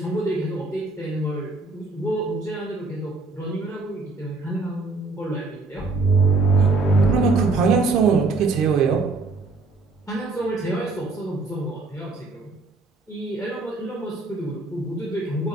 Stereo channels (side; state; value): left; quieter; 3.5 dB